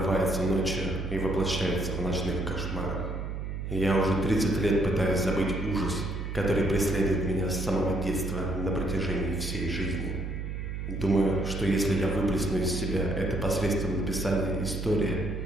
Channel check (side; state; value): right; noise; hum, 5 dB below the sound